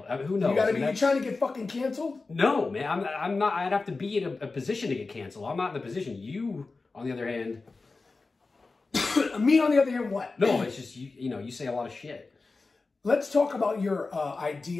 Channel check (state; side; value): quieter; right; 3.8 dB